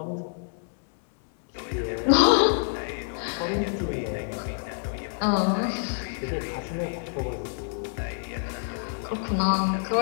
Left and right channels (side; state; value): right; silent; 60 dB below the other